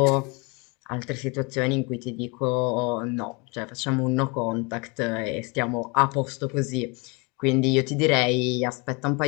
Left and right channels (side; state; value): right; quieter; 29.9 dB